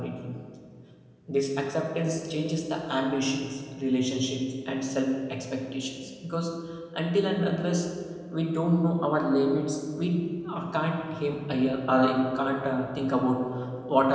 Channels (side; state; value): both; identical; correlation 1.00